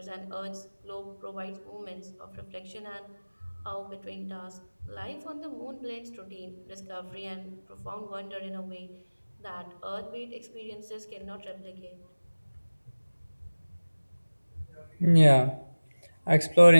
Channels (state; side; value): inverted; both; correlation -1.00